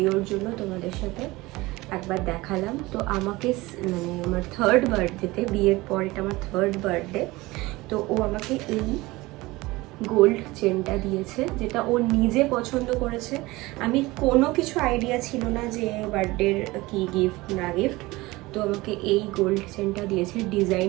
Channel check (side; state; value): left; quieter; 20.7 dB